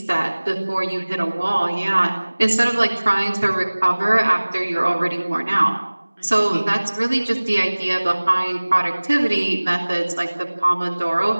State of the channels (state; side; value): inverted; both; correlation -1.00